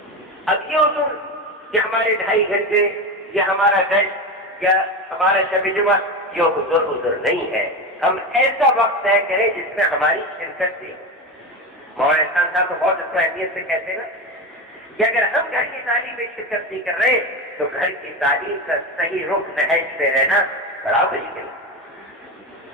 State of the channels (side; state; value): both; normal; correlation 0.20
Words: اب یہ اصول کہ ہمارے 2.5 گھنٹے یا ہمارا گھنٹ یا ہمارا شب جمعہ یہ عذر نہیں ہے، ہم ایسا وقت طے کریں جس میں ہماری شرکت بھی ہو۔ مولانا احسان صاحب تو بہت اس کو اہمیت سے کہتے ہیں نا کہ اگر ہم گھر کی تعلیم میں شرکت نہیں کر رہے تو گھر کی تعلیم کا صحیح رخ نہج پہ رہنا بڑا مشکل ہے۔